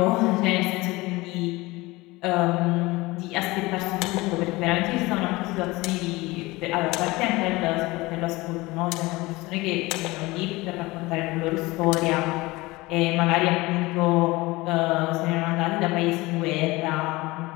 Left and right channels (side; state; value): right; quieter; 21.4 dB